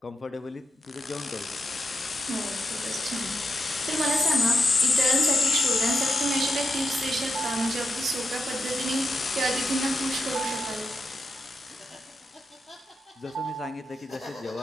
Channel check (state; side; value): normal; both; correlation 0.87